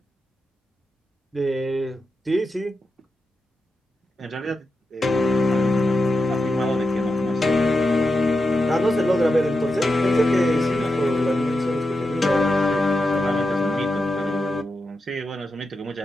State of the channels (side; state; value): both; normal; correlation 0.88